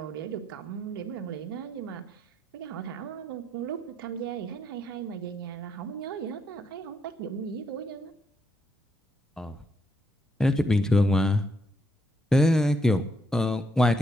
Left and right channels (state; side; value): normal; both; correlation 0.77